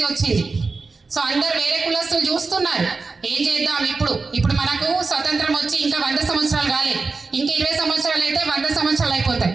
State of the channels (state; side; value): quieter; left; 4.2 dB